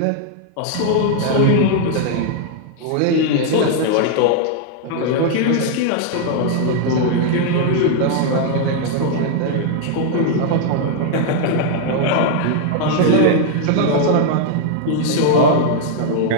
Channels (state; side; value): different; both; correlation 0.00